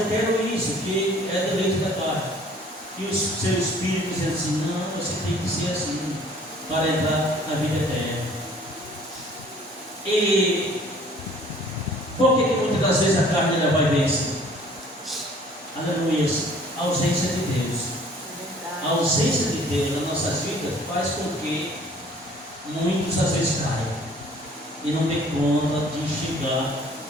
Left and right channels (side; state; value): both; normal; correlation 0.54